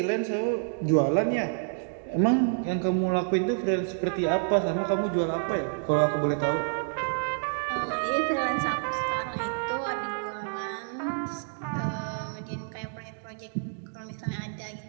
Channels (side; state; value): left; silent; digital silence